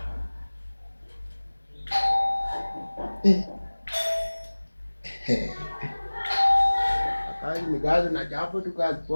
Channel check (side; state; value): both; inverted; correlation -1.00